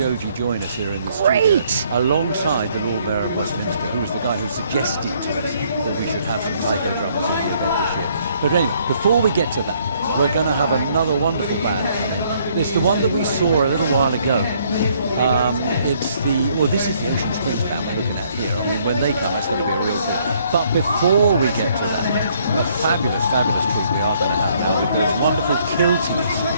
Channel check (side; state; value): both; inverted; correlation -0.66